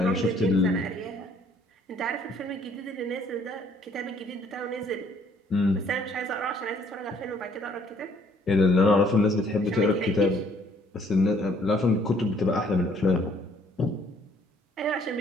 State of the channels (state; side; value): normal; both; correlation 0.62